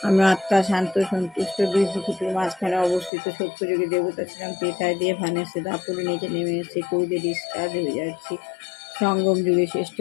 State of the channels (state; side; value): drops out; right; at 3.1 s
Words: আমরা আত্মা শান্ত সন্তুষ্ট দুই প্রকৃতির মাঝখানে অবস্থিত সত্যযুগী দেবতা ছিলাম পেতায় দিয়ে ভানেছে দাপুরে নিচে নেমে এসেছে কৌদে ডিসচার্জ হয়ে যাচ্ছি সঙ্গম যুগে শ্রেষ্ঠ